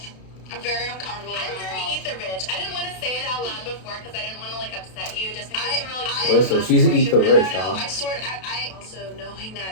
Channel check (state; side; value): late; right; 32 ms